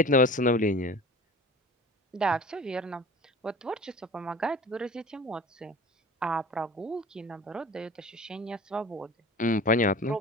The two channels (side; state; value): both; normal; correlation 0.39